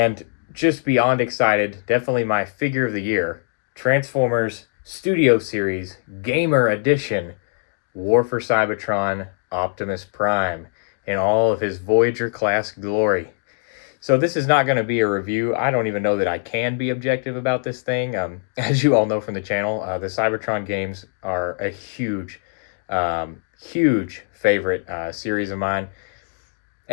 just beyond excited, definitely my figure of the year, Transformers Studio Series Gamer Edition War for Cybertron Optimus Prime in all of his Voyager class glory. So this is not going to be a review. I don't even know that I can be objective about this thing. As you all know from the channel, the Cybertron games are a huge favorite series of mine.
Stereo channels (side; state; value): right; silent; digital silence